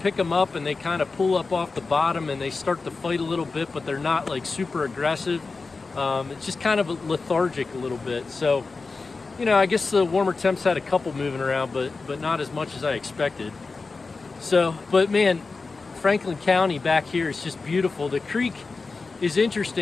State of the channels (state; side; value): quieter; right; 4.1 dB